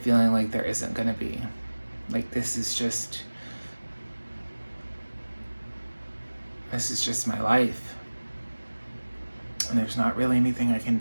like there isn't going to be. Like, this is just my life. And there's not really anything I can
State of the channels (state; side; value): inverted; both; correlation -1.00